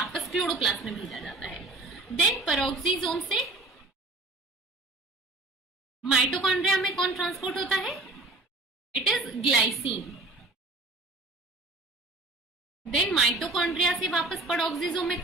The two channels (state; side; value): quieter; left; 3.1 dB